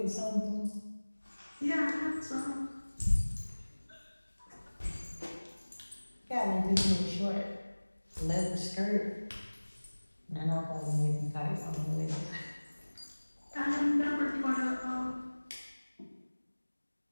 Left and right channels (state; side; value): inverted; both; correlation -1.00